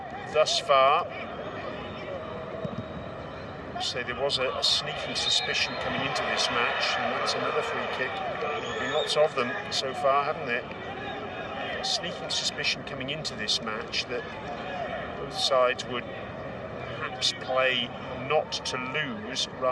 thus far. So there was a sneaking suspicion coming into this match, and that's another free kick. There have been lots of them so far, haven't there? A sneaking suspicion coming into this match that both sides would perhaps play not to lose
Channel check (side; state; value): both; identical; correlation 1.00